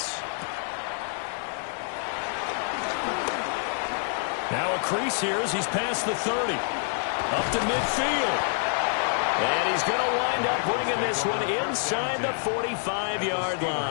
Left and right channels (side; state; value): right; silent; 60 dB below the other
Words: Now a crease here as he's past the 30. Up to midfield. And he's going to wind up bringing this one inside the 45-yard